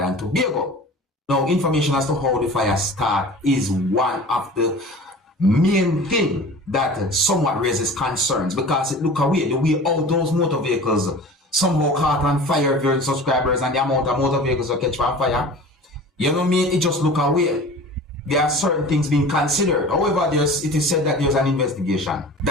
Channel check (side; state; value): both; normal; correlation 0.39